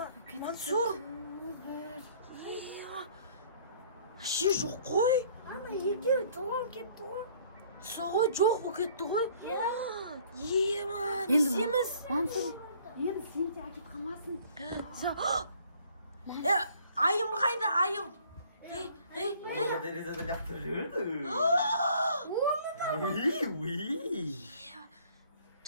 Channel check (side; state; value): both; inverted; correlation -0.57